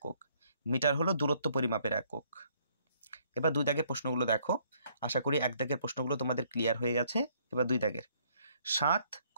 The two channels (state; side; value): inverted; both; correlation -0.66